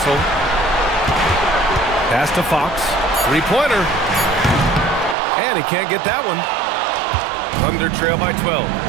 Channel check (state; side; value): drops out; left; at 5.2 s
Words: Pass to Fox. 3-pointer. And he can't get that one. Thunder trail by 12.